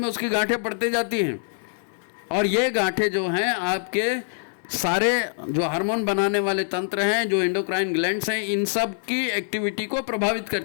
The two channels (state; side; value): silent; right; 62 dB below the other